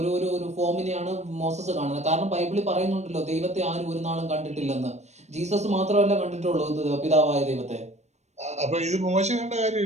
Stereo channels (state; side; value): late; left; 0.33 ms